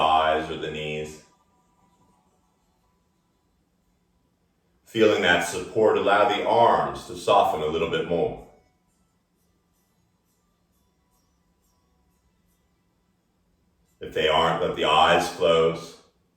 or the knees, feeling that support, allow the arms to soften a little bit more. If they aren't, let the eyes close.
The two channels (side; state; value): both; identical; correlation 1.00